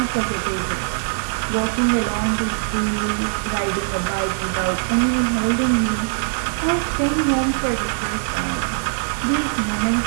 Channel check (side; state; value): left; silent; 65 dB below the other